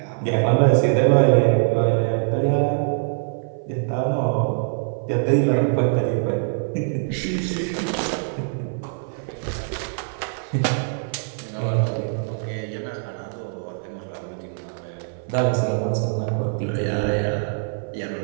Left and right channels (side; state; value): left; silent; 57 dB below the other